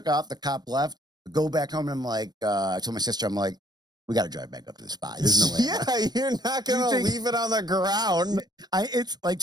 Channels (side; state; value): left; late; 0.19 ms